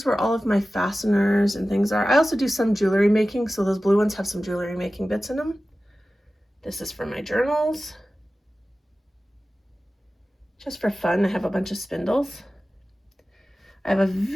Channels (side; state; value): both; normal; correlation 0.95